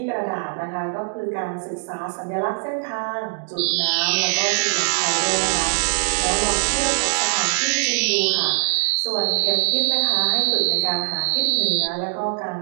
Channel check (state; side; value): silent; left; digital silence